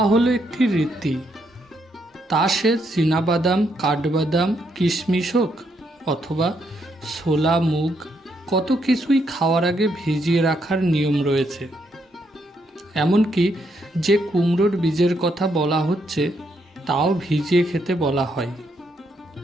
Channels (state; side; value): normal; both; correlation 0.76